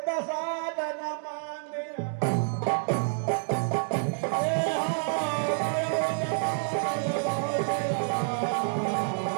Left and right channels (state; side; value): silent; left; digital silence